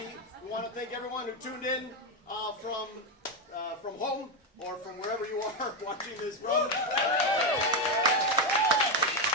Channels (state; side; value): normal; both; correlation 0.06